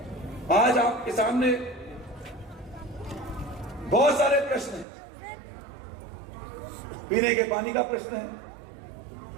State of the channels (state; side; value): drops out; left; at 4.9 s